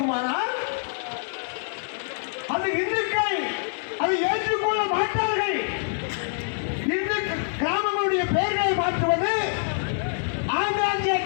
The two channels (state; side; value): silent; right; digital silence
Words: அது இந்துக்கள் அதை ஏற்றுக்கொள்ள மாட்டார்கள். இந்து கிராமங்களுடைய பெயர்களை மாற்றுவது, ஆங்காங்கே